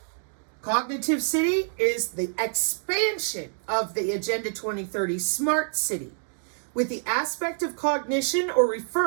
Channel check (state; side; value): silent; left; digital silence